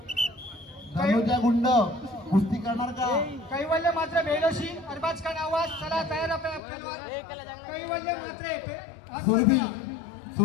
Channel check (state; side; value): drops out; right; at 6.6 s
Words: धनुजा गुंड कुस्ती करणार का? कैवल्य मात्र बेलोशी अरबाज खान आवाज. चला तयार पेलवान. कैवल्य मात्र सुरभी